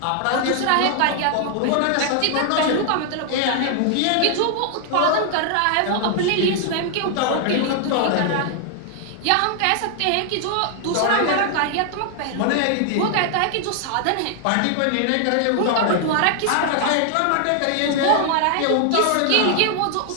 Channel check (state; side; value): different; both; correlation 0.00